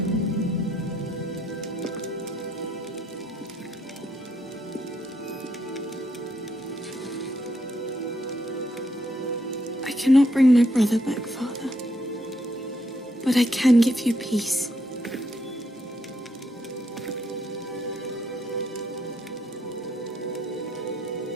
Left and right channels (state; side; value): normal; both; correlation 0.75